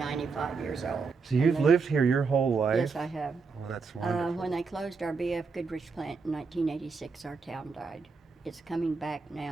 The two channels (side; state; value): left; quieter; 4.8 dB